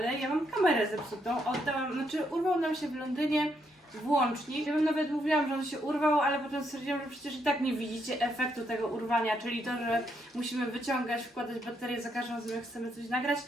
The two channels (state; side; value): normal; both; correlation 0.76